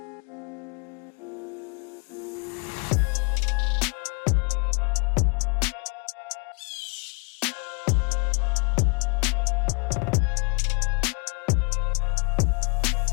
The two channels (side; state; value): right; quieter; 34.1 dB